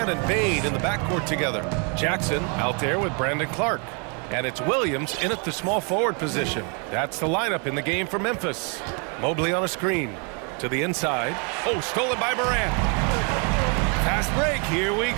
and Bain in the backcourt together. Jackson out there with Brandon Clark. And it's Williams in at the small forward position. That's the lineup in the game for Memphis. Mobley on a screen. To the inside. Oh, stolen by Morant. Fast break. Here we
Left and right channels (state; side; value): quieter; left; 36.2 dB